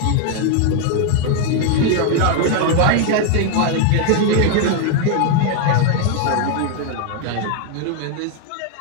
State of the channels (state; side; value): different; both; correlation 0.00